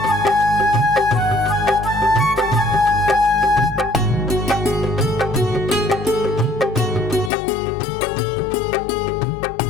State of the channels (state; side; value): drops out; right; at 7.3 s